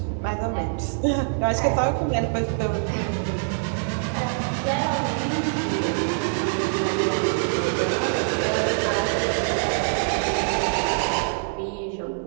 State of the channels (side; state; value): left; silent; 58 dB below the other